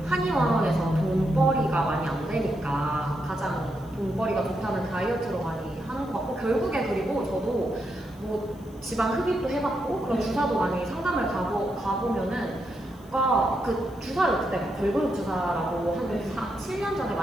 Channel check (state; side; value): noise; left; hiss, 27 dB below the sound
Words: 한의원에서 돈벌이가 많이 안 되니까 가장 돈벌이가 좋다는 다이어트로 많이 하는 것 같고 결국에 그리고 저도 뭐 지방 흡입도 해봤고 그런 주사도 많이 상담을 가보면은 그 주사를 그때 걸그룹 주사라고 한 7년 전에